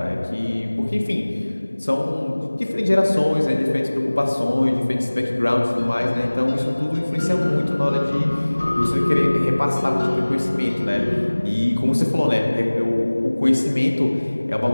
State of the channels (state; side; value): inverted; both; correlation -1.00